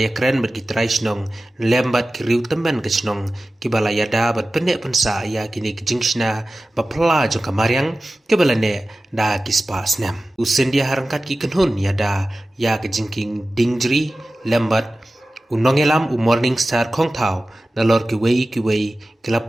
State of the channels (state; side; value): normal; both; correlation 0.96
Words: keren bat ki trai snong lembat ki riu temban kesnong ki bala yada bat pendek pensa ya kini ke jingshna ba pla jong kamaryang ki bala ne da ki spa snam Scindia harangkat ki kenhun yada ya ke Jingkieng Diengjri lembat unongelam morning star khong thau nalor ki wei kila